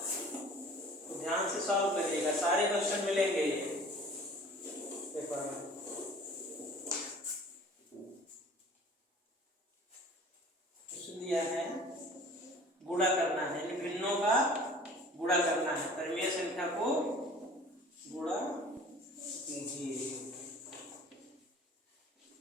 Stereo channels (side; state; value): both; normal; correlation 0.47